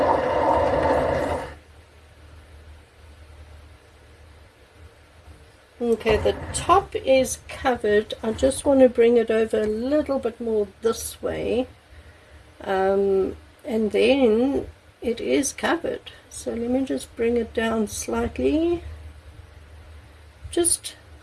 Okay, the top is covered. I just want to bring it over a little bit more this way, and then it is covered. So let me just bring it down slightly, just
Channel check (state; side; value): identical; both; correlation 1.00